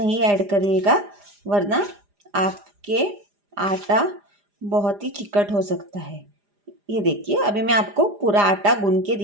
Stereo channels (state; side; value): late; left; 4.9 ms